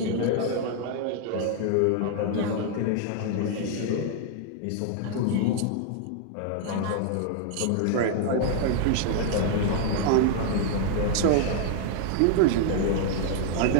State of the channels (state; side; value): different; both; correlation -0.01